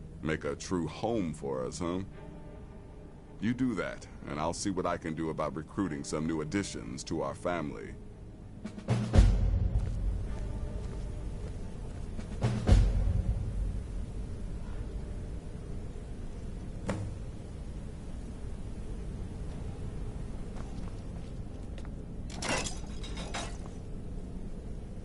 Make a true home for us, huh? You do that, and I'll see what I can do about recruiting some new additions to our family.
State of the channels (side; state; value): both; identical; correlation 1.00